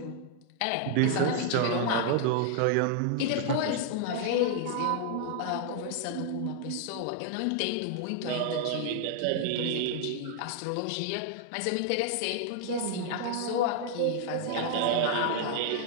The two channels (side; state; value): both; different; correlation 0.00